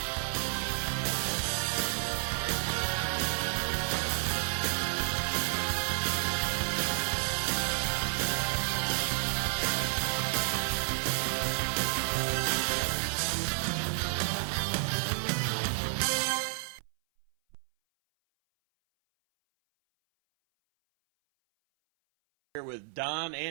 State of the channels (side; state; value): left; silent; 57 dB below the other